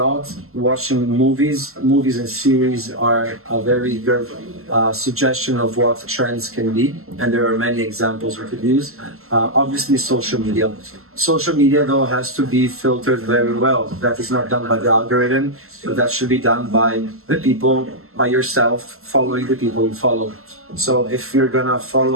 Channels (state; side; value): late; left; 0.62 ms